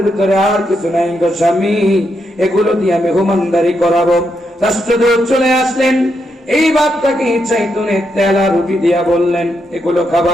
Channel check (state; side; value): normal; both; correlation 0.81